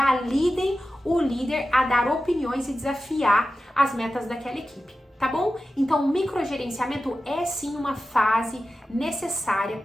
o líder a dar opiniões e desafiar as metas daquela equipe, tá bom? Então, o microgerenciamento é sim uma fase necessária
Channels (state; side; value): normal; both; correlation 0.93